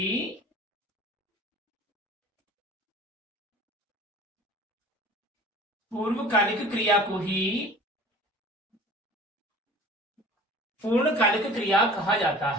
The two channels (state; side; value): normal; both; correlation 0.45